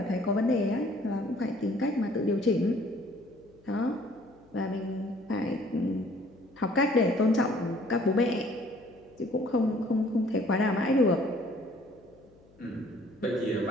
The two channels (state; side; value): noise; left; hum, 28 dB below the sound